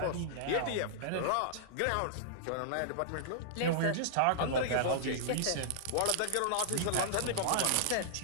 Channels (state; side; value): different; both; correlation -0.02